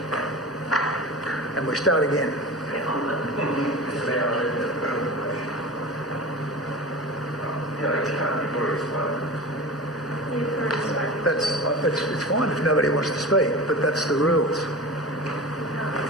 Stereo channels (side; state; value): both; normal; correlation 0.32